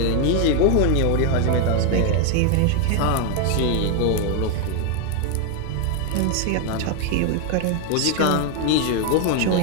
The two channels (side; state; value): both; different; correlation 0.01